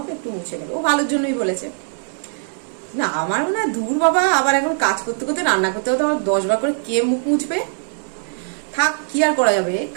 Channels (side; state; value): left; silent; digital silence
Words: একটু মুছে নেবে। ও ভালোর জন্যই বলেছে। না আমার মনে হয় দূর বাবা, আবার এখন কাজ করতে করতে রান্না করতে করতে আবার 10 বার করে কে মুখ মুছবে, থাক কি আর করা যাবে,